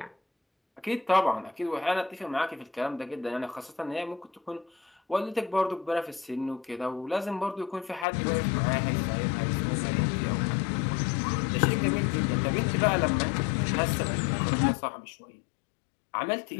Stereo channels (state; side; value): drops out; right; at 8.1 s